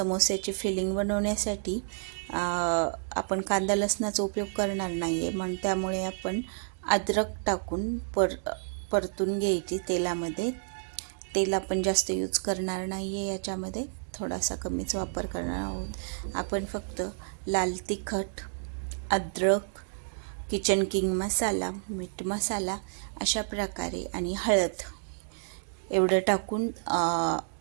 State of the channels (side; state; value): left; silent; digital silence